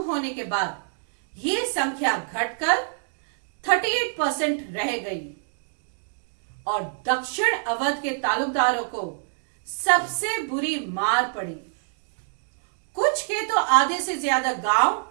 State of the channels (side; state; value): left; silent; digital silence